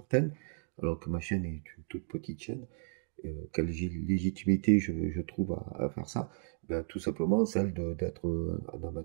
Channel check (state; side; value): silent; left; digital silence